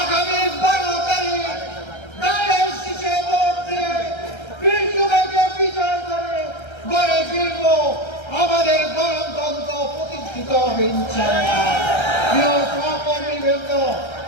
আগামী 12 তারিখ দাঁড়ের শীষে ভোট দিয়ে বিজয়কে বিজয় করে গড়ে ফিরব আমাদের গণতন্ত্র প্রতিষ্ঠিত হবে ইনশাআল্লাহ। প্রিয় সহকর্মীবৃন্দ,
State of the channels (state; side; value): late; right; 1.3 ms